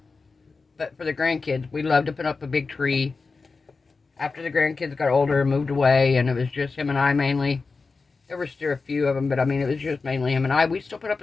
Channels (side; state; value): right; quieter; 4.3 dB